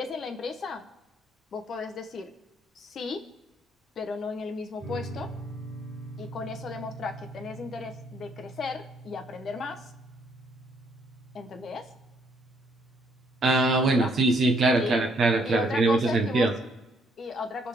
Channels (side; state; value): both; normal; correlation 0.68